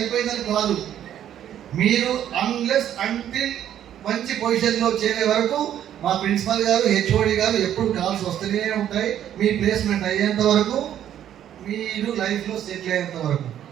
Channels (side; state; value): left; quieter; 10.7 dB